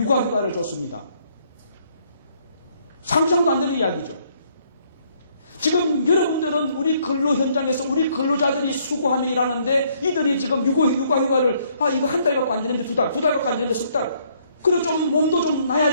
줬습니다. 상상도 안 되는 이야기죠. 지금 여러분들은 우리 근로 현장에서 우리 근로자들이 수고하며 일하는데 이들이 지금 육아휴가를 이거 한 달 갖고 안 되는데 두 달 갖고 안 되는데 석 달. 그리고 좀 몸도 좀 나야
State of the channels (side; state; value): both; inverted; correlation -0.67